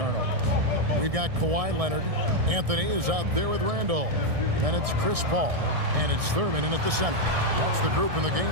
We've got Kawhi Leonard. Anthony is out there with Randolph. And it's Chris Paul. And it's Thurman in at the center. That's the group in the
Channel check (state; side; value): late; left; 1.7 ms